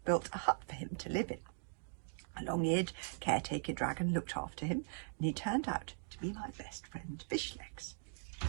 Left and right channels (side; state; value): left; silent; digital silence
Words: built a hut for him to live in. A long-eared caretaker dragon looked after him, and he turned out to be my best friend Fishlegs.